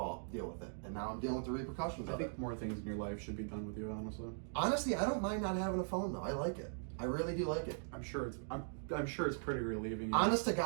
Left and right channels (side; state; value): left; silent; digital silence